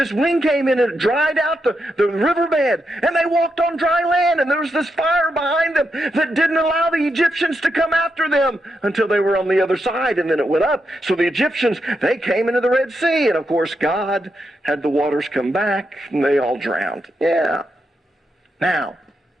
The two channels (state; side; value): normal; both; correlation 0.84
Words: wind came in and it dried out the riverbed. And they walked on dry land. And there was this fire behind them that didn't allow the Egyptians to come after them until they were on the other side. And then it went up. So the Egyptians, they came into the Red Sea. And of course, God had the waters come back and they all drowned. Yeah. Now,